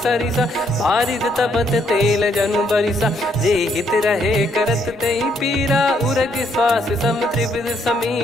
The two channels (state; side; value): normal; both; correlation 0.72